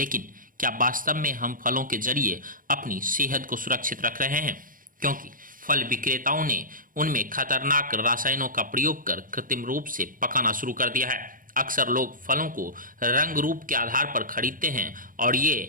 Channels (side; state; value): left; late; 0.40 ms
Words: क्या वास्तव में हम फलों के जरिए अपनी सेहत को सुरक्षित रख रहे हैं? क्योंकि फल विक्रेताओं ने उनमें खतरनाक रसायनों का प्रयोग कर कृत्रिम रूप से पकाना शुरू कर दिया है। अक्सर लोग फलों को रंग रूप के आधार पर खरीदते हैं और ये